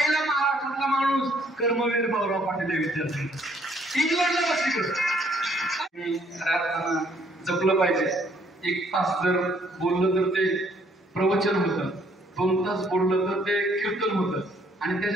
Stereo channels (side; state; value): both; normal; correlation 0.65